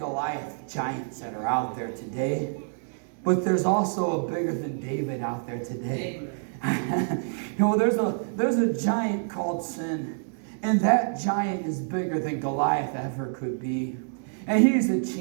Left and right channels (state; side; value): silent; left; digital silence